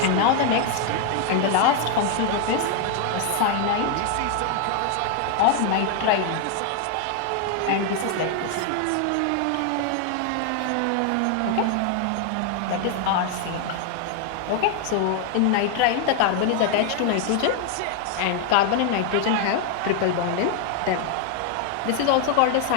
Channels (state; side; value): different; both; correlation 0.00